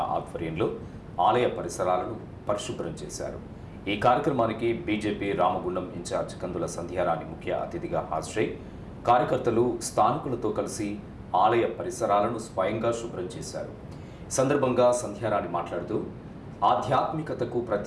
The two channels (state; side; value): identical; both; correlation 1.00